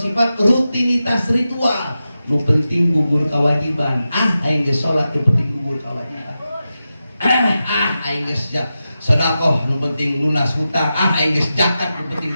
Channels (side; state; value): both; inverted; correlation -0.91